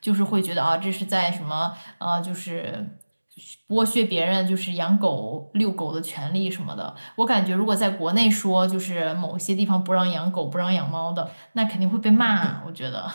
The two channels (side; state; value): both; inverted; correlation -1.00